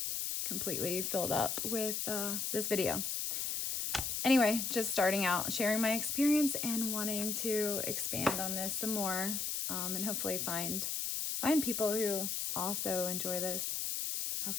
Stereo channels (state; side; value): noise; left; hiss, 1 dB below the sound